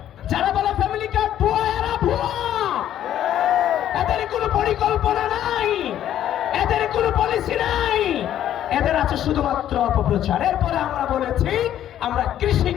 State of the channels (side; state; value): right; quieter; 11.3 dB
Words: যারা বলে ফ্যামিলি কার্ড ভুয়া, এরা ভুয়া। এদের কোনো পরিকল্পনা নাই, এদের কোনো পলিসি নাই, এদের আছে শুধুমাত্র অপপ্রচার। এরপরে আমরা বলেছি আমরা কৃষি